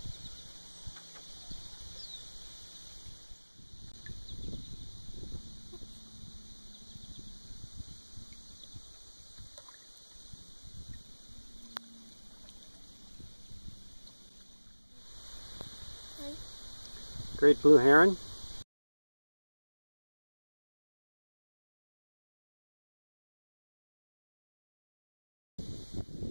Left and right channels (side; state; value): both; inverted; correlation -1.00